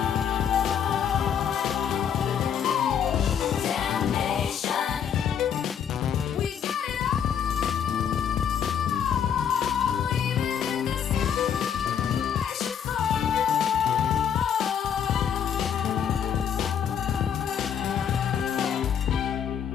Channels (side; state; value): right; quieter; 8.3 dB